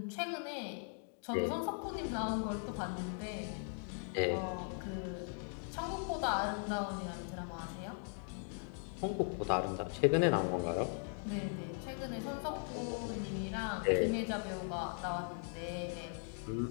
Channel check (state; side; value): silent; right; 52 dB below the other